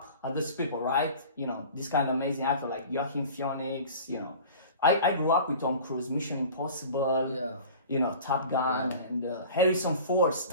at these people, right? This kind of amazing actor like Joaquin Phoenix, I grew up with Tom Cruise, Mission Impossible. Yeah. Top Gun, and Harrison Ford,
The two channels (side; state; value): both; inverted; correlation -0.41